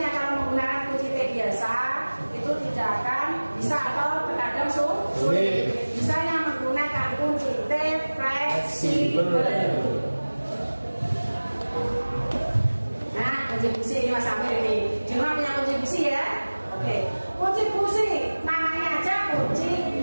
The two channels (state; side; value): inverted; both; correlation -1.00